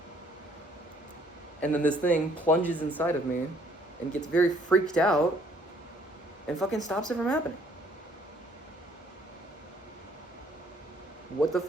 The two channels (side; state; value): both; normal; correlation 0.62